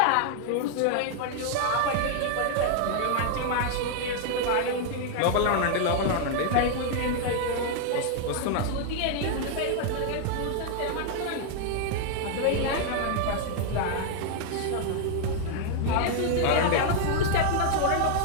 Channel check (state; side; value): different; both; correlation 0.00